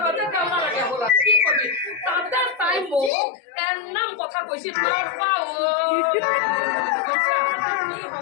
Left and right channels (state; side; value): drops out; right; at 3.1 s